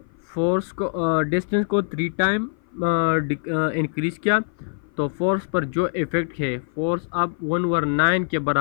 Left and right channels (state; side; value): silent; right; 55 dB below the other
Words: फोर्स को डिस्टेंस को 3 टाइम इंक्रीज़ किया तो फोर्स पर जो इफ़ेक्ट है, फोर्स अब 1/9 के